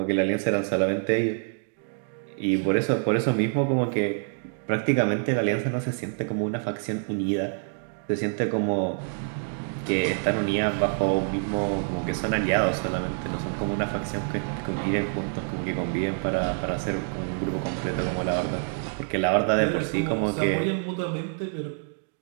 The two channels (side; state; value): left; silent; digital silence